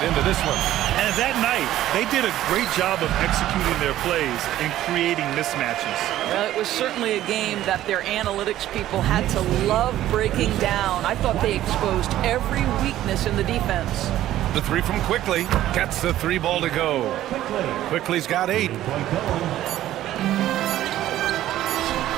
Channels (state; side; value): quieter; left; 13.5 dB